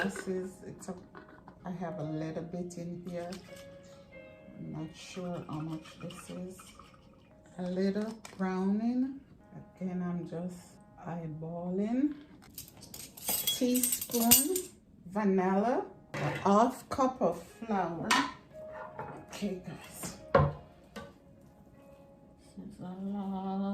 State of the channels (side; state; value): both; identical; correlation 1.00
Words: I have a little bit in here. I'm not sure how much this is. A little browning. Again, I'm just eyeballing. Teaspoon vanilla. A half cup of flour. Okay, guys. This is a